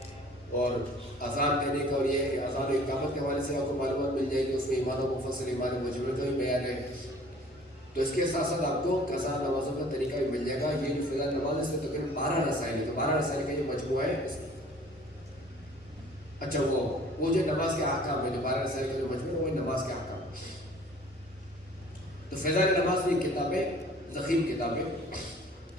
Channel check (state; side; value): normal; both; correlation 0.51